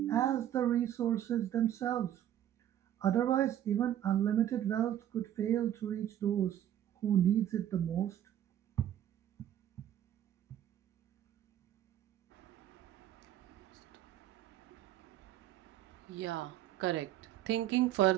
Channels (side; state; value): left; quieter; 11.4 dB